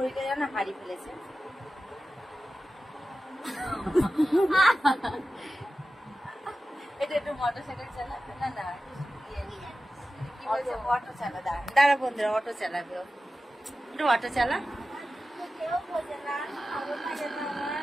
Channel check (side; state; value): both; normal; correlation 0.94